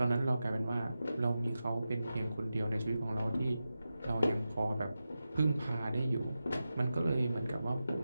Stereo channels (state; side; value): inverted; both; correlation -0.92